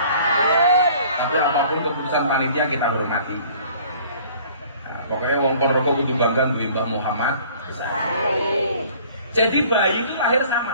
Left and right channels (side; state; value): both; inverted; correlation -0.52